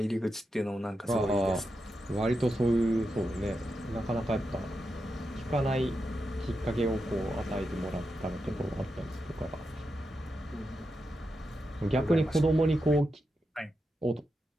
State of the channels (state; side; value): normal; both; correlation 0.87